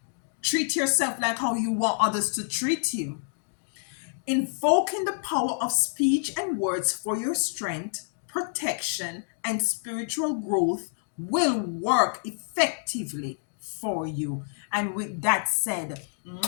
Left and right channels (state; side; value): silent; right; 60 dB below the other